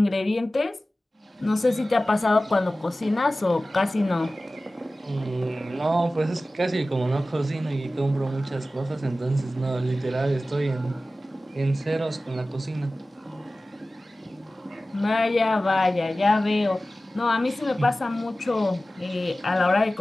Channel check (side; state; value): both; normal; correlation 0.96